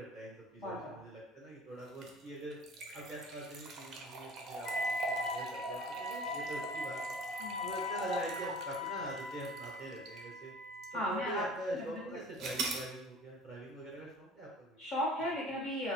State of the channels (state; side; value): normal; both; correlation 0.45